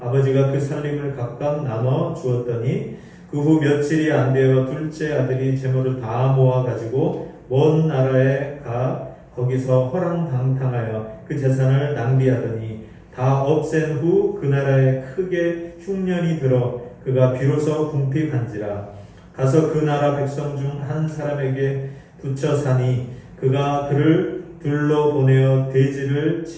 그 살림을 각각 나눠 주었더니 그 후 며칠이 안 되어 둘째 아들이 재물을 다 모아 가지고 먼 나라에 가 거기서 허랑방탕하여 그 재산을 낭비하더니 다 없앤 후 그 나라에 크게 흉년이 들어 그가 비로소 궁핍한지라. 가서 그 나라 백성 중 한 사람에게 붙여 사니 그가 그를 둘러 보내어 돼지를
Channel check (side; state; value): both; identical; correlation 1.00